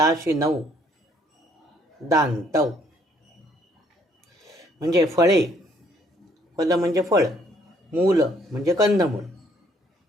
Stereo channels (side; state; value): both; normal; correlation 0.65